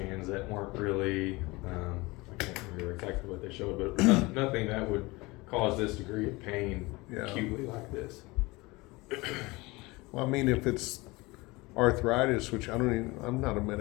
that weren't really, I can't remember exactly what they showed, but nothing that would cause this degree of pain Yeah. acutely like this. Well, I mean, if it's arthritis, which I'm not a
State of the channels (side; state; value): right; quieter; 23.0 dB